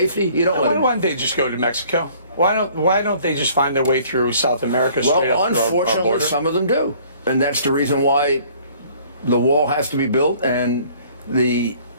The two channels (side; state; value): both; inverted; correlation -0.56